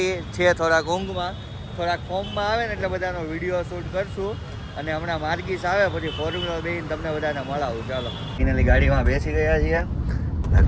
છે, થોડાક ઊંઘમાં, થોડાક ફોર્મમાં આવે ને એટલે બધાનો વિડીયો શૂટ કરશું. અને હમણાં માર્ગીસ આવે પછી ફોર્મ્યુલર બેન તમને બધાને મળાવું. ચાલો, ફાઇનલી ગાડીમાં બેસી ગયા છીએ,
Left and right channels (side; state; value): both; identical; correlation 1.00